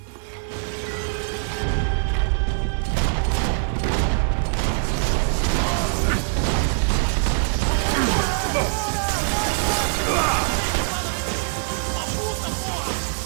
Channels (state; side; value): silent; left; 59 dB below the other